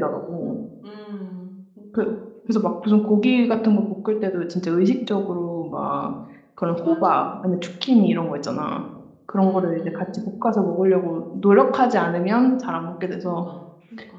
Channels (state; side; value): identical; both; correlation 1.00